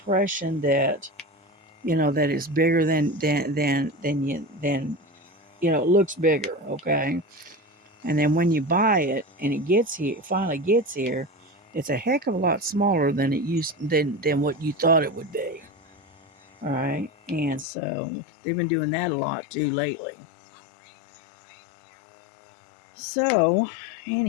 that that it's bigger than it looks bigger, okay, and then when you buy it and it finally gets here, it's a heck of a lot smaller than it used than what you thought it would be. All right, and so they've been doing that a lot too lately. So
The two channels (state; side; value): drops out; right; at 17.7 s